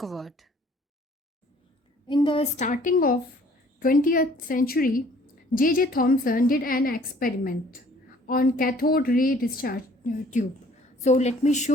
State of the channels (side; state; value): both; normal; correlation 0.56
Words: In the starting of 20th century, J.J. Thomson did an experiment on cathode ray discharge tube. So let me